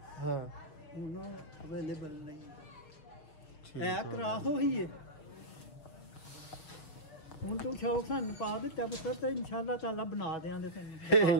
उन्होंने अवेलेबल नहीं है। क्रास हो ही है ਹੁਣ ਤੂੰ ਸ਼ੌਕ ਸਾਨੂੰ ਪਾ ਦਿੱਤਾ ਪੁੱਤਰ, ਤੇ ਇਨਸ਼ਾਅੱਲਾ ਤਾਲਾ ਬਣਾ ਦੇਾਂਗੇ ਤੈਨੂੰ।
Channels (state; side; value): late; right; 6.5 ms